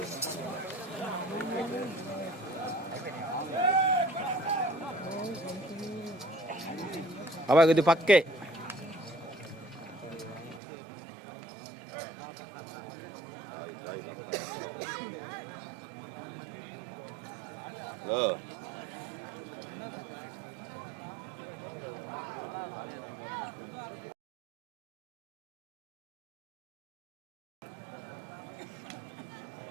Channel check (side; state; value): left; drops out; at 10.6 s